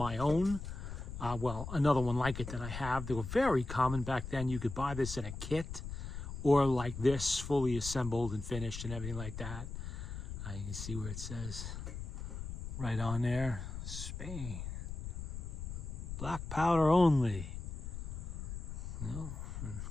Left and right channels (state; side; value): noise; left; rumble, 7 dB below the sound